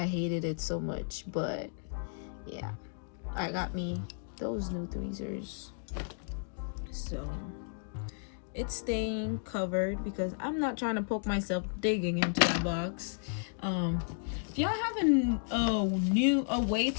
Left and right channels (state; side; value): silent; right; digital silence